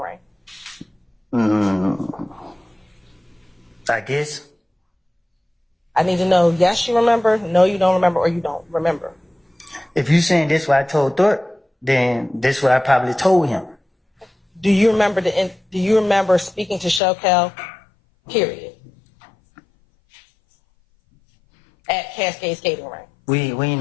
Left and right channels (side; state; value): right; drops out; at 17.0 s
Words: I guess. I need to know, yes, you remember, no, you don't remember, or you don't remember. If you saying this what I told Thorpe, then this is what I probably told him. Do you remember speaking to Shokel? Period. At Cascade Skating Rink. We ain't